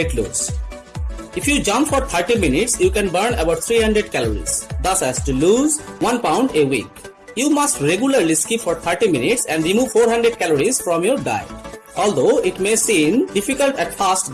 loss. If you jump for 30 minutes, you can burn about 300 calories, thus as to lose 1 pound a week. You must regularly skip for 30 minutes and remove 400 calories from your diet, although it may seem difficult at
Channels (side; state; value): both; identical; correlation 1.00